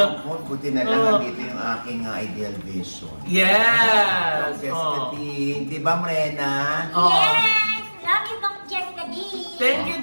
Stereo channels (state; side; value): inverted; both; correlation -1.00